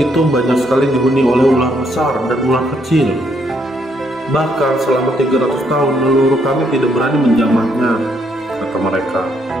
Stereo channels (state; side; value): normal; both; correlation 0.73